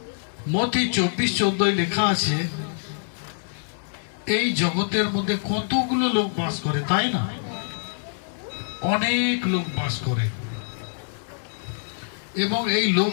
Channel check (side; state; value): right; silent; digital silence